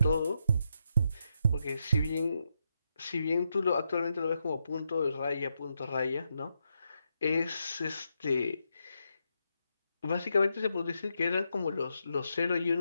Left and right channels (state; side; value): inverted; both; correlation -0.82